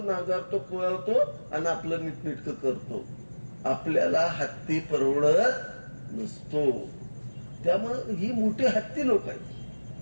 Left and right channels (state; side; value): inverted; both; correlation -1.00